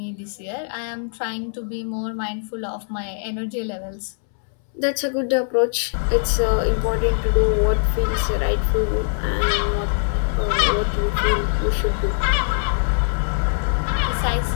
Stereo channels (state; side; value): silent; right; 64 dB below the other